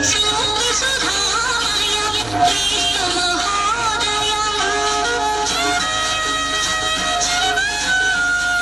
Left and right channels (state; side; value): noise; right; hum, 16 dB below the sound